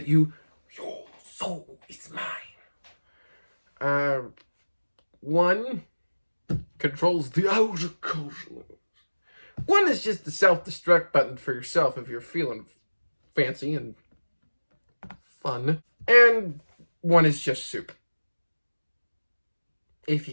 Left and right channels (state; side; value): inverted; both; correlation -1.00